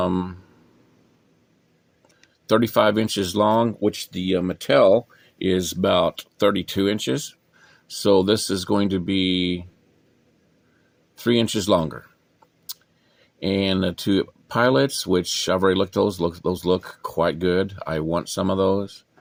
inches long, which the Mattel is about 32 inches. So this is going to be 3 inches longer. And the two pilots, which I've already looked at, those look quite good. I want some of those.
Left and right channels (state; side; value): identical; both; correlation 1.00